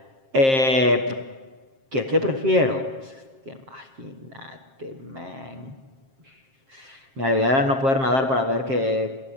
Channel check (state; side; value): late; left; 7.5 ms